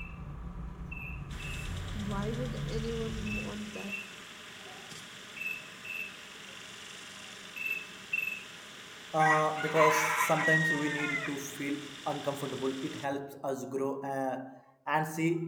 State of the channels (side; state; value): both; identical; correlation 1.00